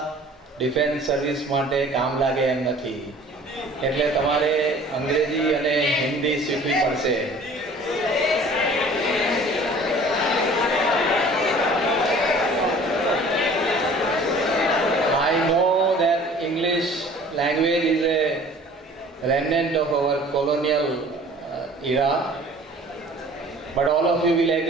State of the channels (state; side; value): normal; both; correlation 0.49